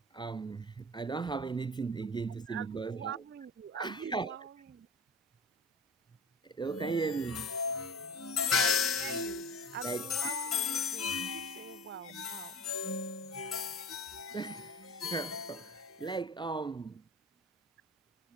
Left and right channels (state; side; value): normal; both; correlation 0.37